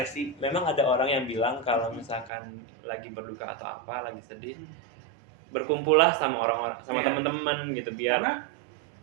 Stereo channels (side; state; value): left; drops out; at 2.3 s